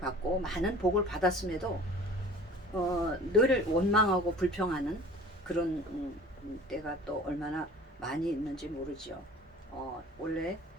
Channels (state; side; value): normal; both; correlation 0.45